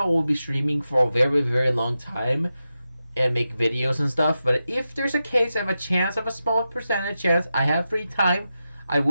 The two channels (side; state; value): both; inverted; correlation -0.91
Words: will be streaming for a very, very long time and make videos and stuff. But if there's a case, I have a small percentage chance, I have free time, I